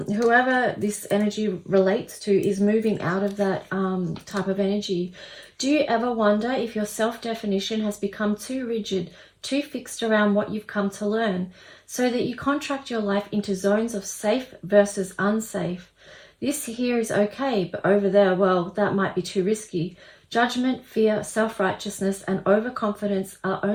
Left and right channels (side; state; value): both; identical; correlation 1.00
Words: whoever this energy relates to is moving out of that type of energy. Do you ever wonder if your self-definition has become too rigid, too fixed around what you've come to learn, so that you contract your life into zones of safe versus unsafe? This here is okay, but over there, well, that might be too risky. Judgment, fear, self-righteousness, and overconfidence are